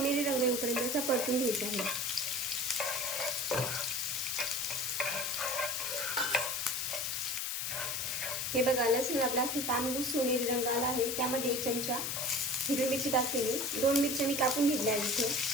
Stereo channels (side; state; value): left; noise; hiss, 1 dB below the sound